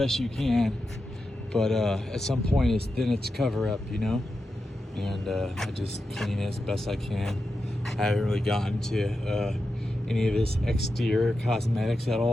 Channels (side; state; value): both; normal; correlation 0.89